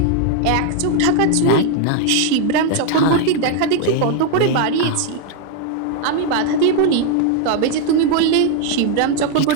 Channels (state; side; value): different; both; correlation 0.00